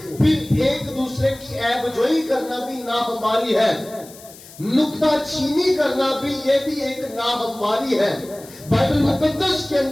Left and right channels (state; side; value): noise; left; hiss, 20 dB below the sound